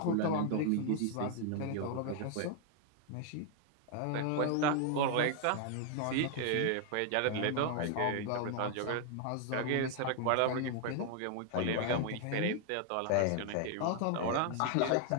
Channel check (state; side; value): different; both; correlation 0.00